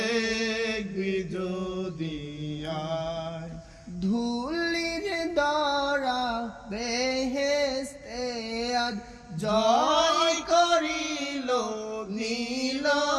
যদি আয় ধুলির দ্বারা বেহেশতে আজ জয় করিল নীল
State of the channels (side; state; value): both; identical; correlation 1.00